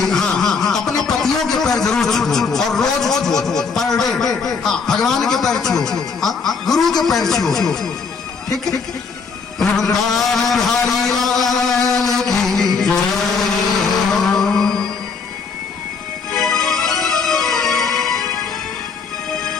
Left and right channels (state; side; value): quieter; right; 5.2 dB